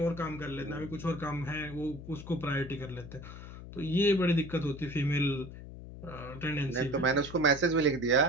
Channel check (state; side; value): noise; left; hum, 13 dB below the sound